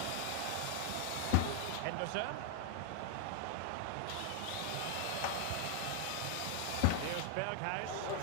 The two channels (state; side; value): different; both; correlation 0.00